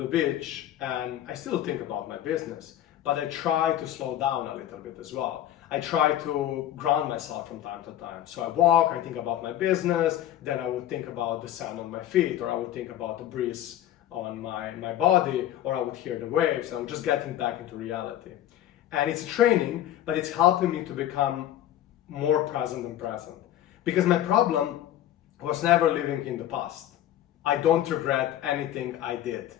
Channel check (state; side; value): quieter; right; 12.3 dB